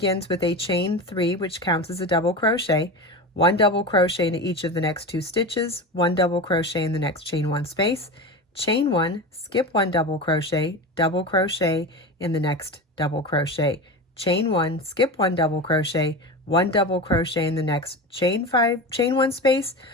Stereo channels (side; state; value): both; normal; correlation 0.26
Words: with a chain 3, which counts as a double crochet, 1 double crochet into each of the next 2 stitches, 1 double crochet in the next chain 1 space, chain 1, skip 1 double crochet in the next double crochet, chain 1, skip 1 double crochet, 1 double crochet in the next chain 1 space,